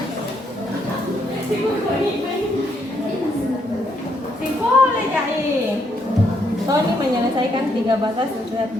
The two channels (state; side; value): normal; both; correlation 0.74